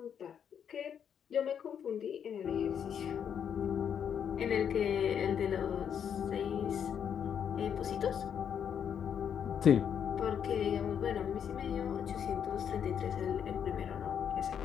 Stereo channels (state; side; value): quieter; right; 8.2 dB